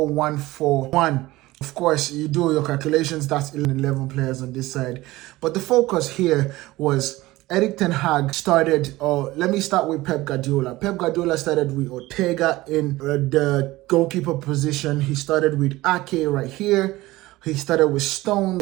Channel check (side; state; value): left; quieter; 18.7 dB